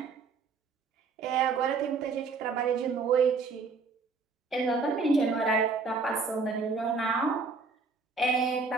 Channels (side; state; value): left; quieter; 4.5 dB